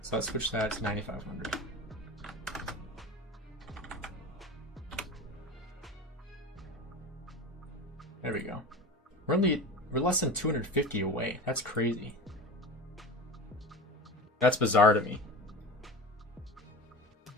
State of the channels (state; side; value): normal; both; correlation 0.30